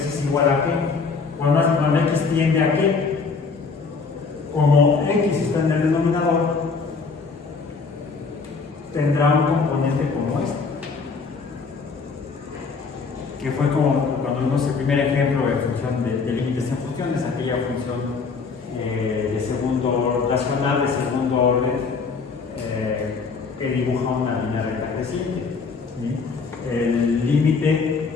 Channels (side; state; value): right; quieter; 4.8 dB